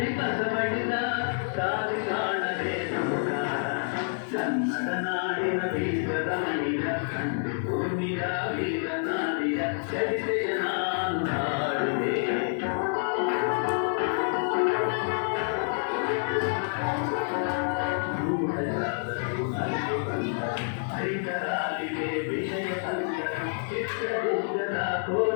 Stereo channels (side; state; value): right; silent; digital silence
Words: ಕಸಬಡಿದ ದಾರಿ ಕಾಣದೆ ನಮಗ. ಕನ್ನಡ ನಾಡಿನ ವೀರದ ಮಣಿಯ ಕಂಡು ಭೂಮಿಯ ವೀರನಾರಿಯ ಚರಿತೆಯ ನಾನು ಮಾಡುವೆ. ಹೈದರಾಲಿಗೆ ವಿಷಯ ತಂದರು, ಚಿತ್ರದುರ್ಗದ